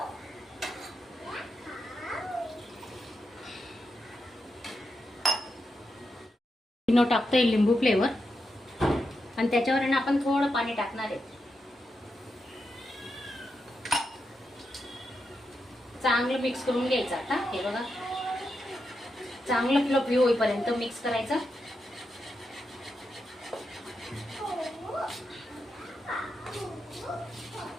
टाकतोय लिंबू फ्लेवर आणि त्याच्यावर ना आपण थोडं पाणी टाकणार आहे. चांगलं मिक्स करून घ्यायचं. आता हे बघा चांगलं फ्लफी होईपर्यंत मिक्स करायचं.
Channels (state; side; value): normal; both; correlation 0.86